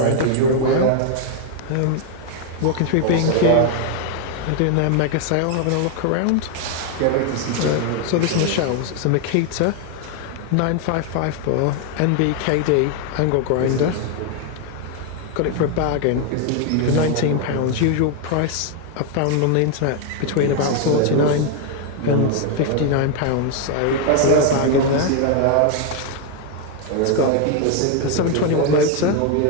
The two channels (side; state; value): both; different; correlation 0.00